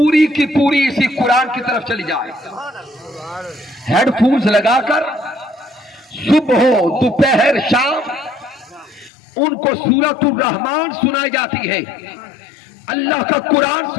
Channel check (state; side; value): drops out; right; at 9.1 s